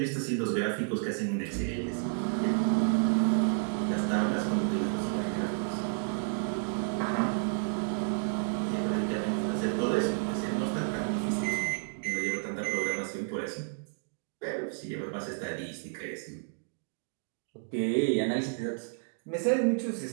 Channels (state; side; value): silent; left; digital silence